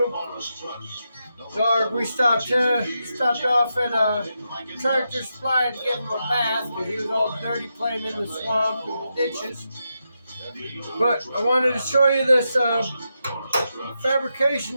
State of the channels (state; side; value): inverted; both; correlation -0.86